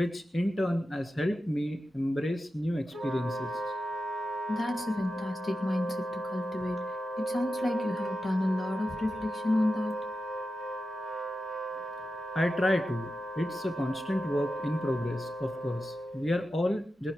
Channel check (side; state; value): both; normal; correlation 0.91